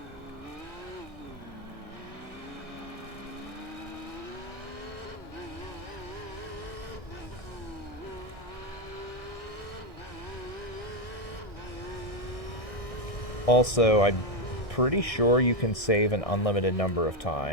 Also, I'm pretty sure you can save an unlimited number of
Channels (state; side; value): late; right; 1.6 ms